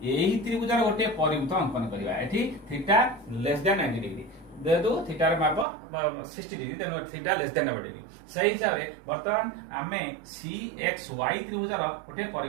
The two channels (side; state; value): left; drops out; at 5.7 s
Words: एही त्रिभुज गोटे परिवृत्त अंकन करिवा एठी थीटा लेस देन 90 डिग्री देदु थीटा रे माप 60 डिग्री तेनु थीटा लेस देन 90 डिग्री सही हिसाब रे वर्तमान आमे सी एक्स वाई त्रिभुज रो गोटे